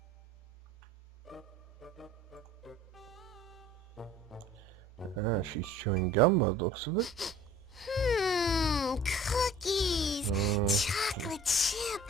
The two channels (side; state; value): both; normal; correlation 0.48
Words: Ah, she's chewing gum by the looks of it. Cookies. Chocolate chip.